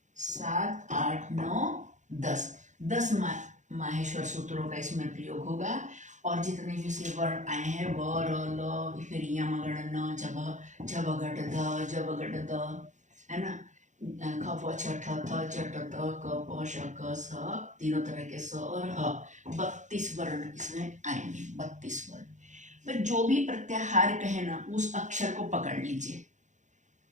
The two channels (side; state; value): left; late; 0.35 ms